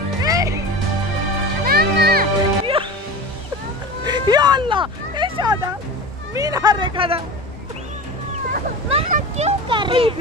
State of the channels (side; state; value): both; normal; correlation 0.30